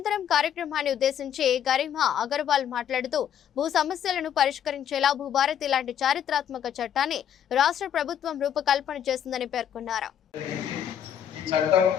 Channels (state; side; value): quieter; right; 9.5 dB